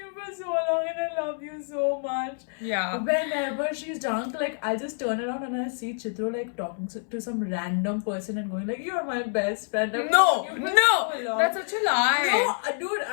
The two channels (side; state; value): right; silent; 59 dB below the other